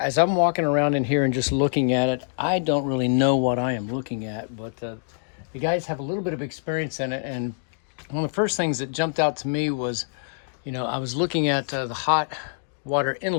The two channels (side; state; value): right; silent; digital silence